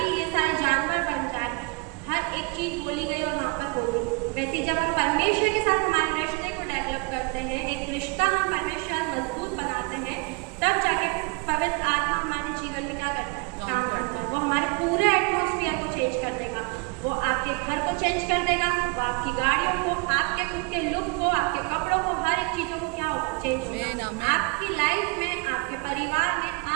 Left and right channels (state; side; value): quieter; left; 30.1 dB